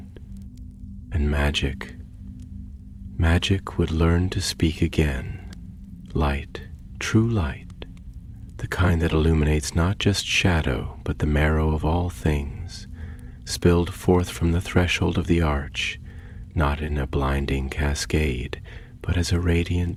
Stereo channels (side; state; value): both; identical; correlation 1.00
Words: and magic would learn to speak again. Light, true light. The kind that illuminates not just shadow, but the marrow of all things, spilled forth from the threshold of the arch, not in a blinding cascade, but as a